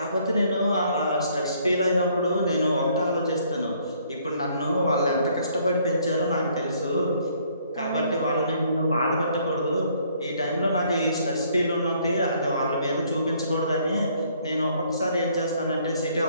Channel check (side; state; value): both; inverted; correlation -0.64